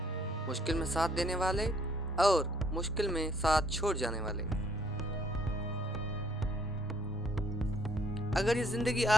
मुश्किल में साथ देने वाले और मुश्किल में साथ छोड़ जाने वाले। अगर ये जिंदगी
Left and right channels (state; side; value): normal; both; correlation 0.64